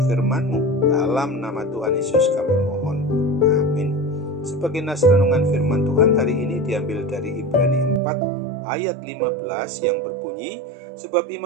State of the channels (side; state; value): left; drops out; at 8.0 s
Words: firman-Mu. Dalam nama Tuhan Yesus kami mohon, amin. Sebagai nas renungan firman Tuhan hari ini diambil dari Ibrani 4 ayat 15 yang berbunyi, sebab